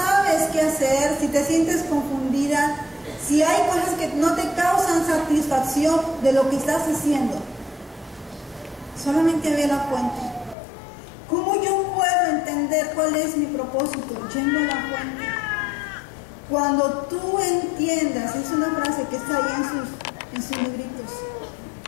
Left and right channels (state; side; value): drops out; right; at 10.6 s